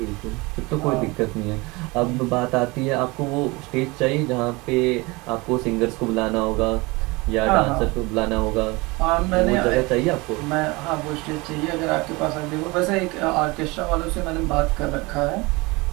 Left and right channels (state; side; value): quieter; left; 24.4 dB